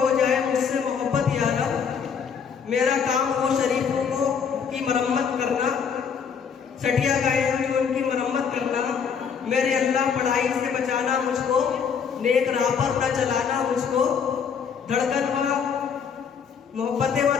जाए मुझसे मोहब्बत यारब, मेरा काम हो शरीफों को की मरम्मत करना, सटिया गए हैं जो उनकी मरम्मत करना, मेरे अल्लाह पढ़ाई से बचाना मुझको, नेक राह पर न चलाना मुझको, धड़कन व मोहब्बतें व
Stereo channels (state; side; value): quieter; right; 6.7 dB